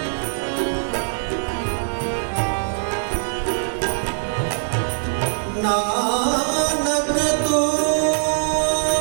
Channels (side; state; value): left; silent; digital silence